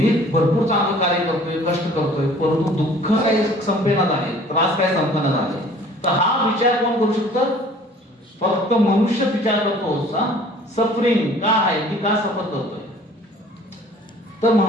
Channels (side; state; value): both; normal; correlation 0.51